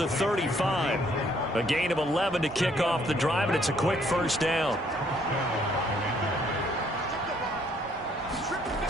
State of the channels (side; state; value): both; normal; correlation 0.66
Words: 35. A gain of 11 to kick off the drive, and it's a quick 1st down.